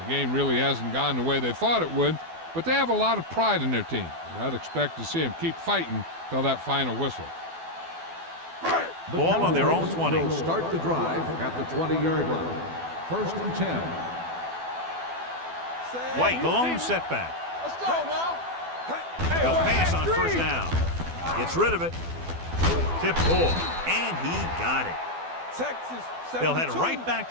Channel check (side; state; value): left; late; 12 ms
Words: The game really hasn't gone the way they thought it would, but they have a lot of pride in their team. And I'd expect to see them keep fighting till that final whistle. The Ball on their own Cowboys 20. will start the drive at the 20-yard line. 1st and 10. White, the lone setback. Let's go now. He'll pass on 1st down. Gets rid of it. Tip ball. And he got it. Texas, 72. They'll head right back